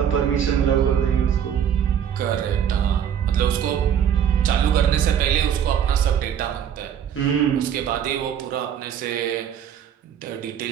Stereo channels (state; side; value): quieter; left; 8.9 dB